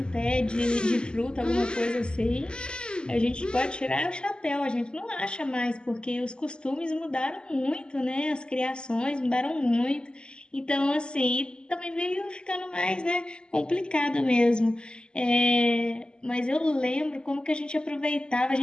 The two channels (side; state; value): right; late; 0.049 ms